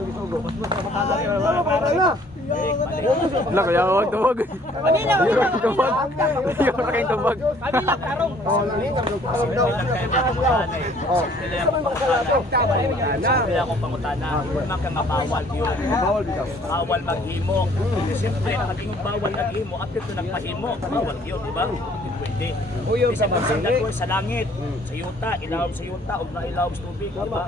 isugo? Mas makakala na. Lak, huwag tubag. Yung tubag. Sila akong pangutana, huwag kang mabawal yun. Bawal maghimo. Siyempre, nakagingong bawal naghimo, at ito nagpahimo, bawal yun, di ba? Pwede. Isa ba sa langit, sa yuta, ilawom sa yuta, o ilawom sa tubig, di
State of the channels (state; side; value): normal; both; correlation 0.58